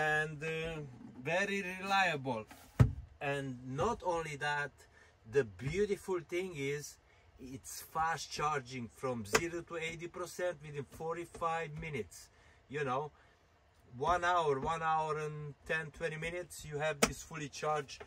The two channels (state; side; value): identical; both; correlation 1.00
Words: very reliable. And not only that, the beautiful thing is it's fast charging from 0 to 80% within 45 minutes. You know, 1 hour and 10-20 minutes, you have this fully charged,